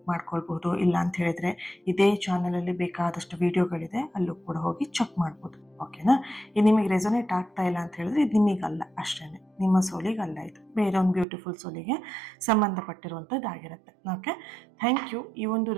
ಮಾಡ್ಕೊಳ್ಬೋದು. ಇಲ್ಲ ಅಂತ ಹೇಳಿದ್ರೆ ಇದೇ ಚಾನಲಲ್ಲಿ ಬೇಕಾದಷ್ಟು ವಿಡಿಯೋಗಳಿದೆ, ಅಲ್ಲೂ ಕೂಡ ಹೋಗಿ ಚೆಕ್ ಮಾಡ್ಬೋದು. ಓಕೆನಾ? ಇದು ನಿಮಗೆ ರೆಸೊನೇಟ್ ಆಗ್ತಾ ಇಲ್ಲ ಅಂತ ಹೇಳಿದ್ರೆ ಇದು ನಿಮಗಲ್ಲ, ಅಷ್ಟೇ, ನಿಮ್ಮ ಸೋಲಿಗಲ್ಲ, ಇದು ಬೇರೆ ಒಂದು ಬ್ಯೂಟಿಫುಲ್ ಸೋಲಿಗೆ ಸಂಬಂಧಪಟ್ಟಿರುವಂಥದ್ದಾಗಿರುತ್ತೆ. Okay, thank you. ಈ ಒಂದು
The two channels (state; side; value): drops out; left; at 11.2 s